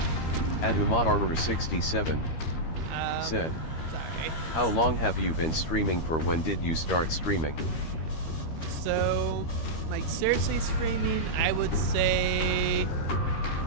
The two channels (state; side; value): late; right; 13 ms